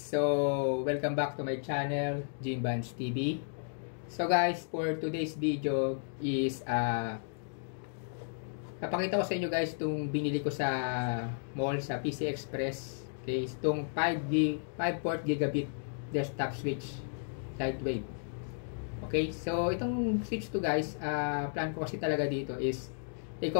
welcome back to my channel, Jimbans TV. So guys, for today's video is napakita ko sa inyo guys itong binili ko sa mall sa PC Express. Okay, itong 5 port gigabit desktop switch lightweight. Okay, so itong switch to guys, plan ko kasi talaga dito is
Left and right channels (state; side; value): silent; right; digital silence